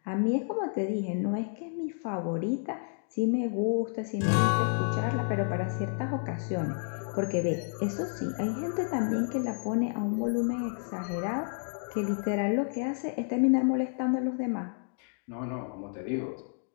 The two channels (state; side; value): silent; right; 57 dB below the other